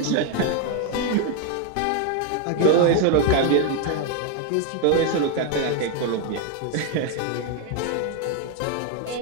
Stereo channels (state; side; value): different; both; correlation 0.01